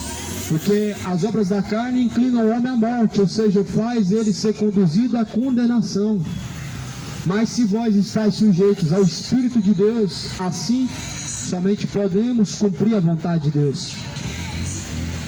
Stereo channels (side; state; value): both; identical; correlation 1.00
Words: porque as obras da carne inclinam o homem à morte, ou seja, faz ele ser conduzido à condenação. Mas se vós estáis sujeitos ao Espírito de Deus, assim somente podemos cumprir a vontade de Deus.